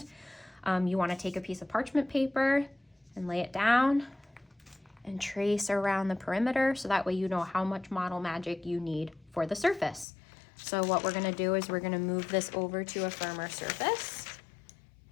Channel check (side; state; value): right; drops out; at 10.1 s